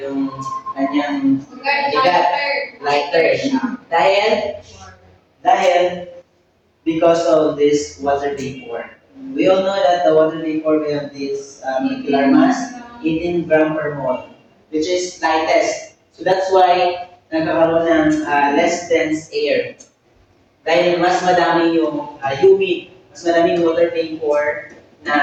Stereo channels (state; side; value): identical; both; correlation 1.00